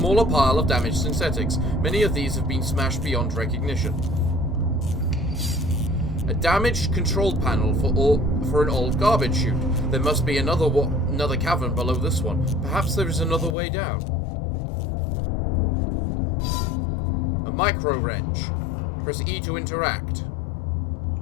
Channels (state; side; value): drops out; right; at 13.6 s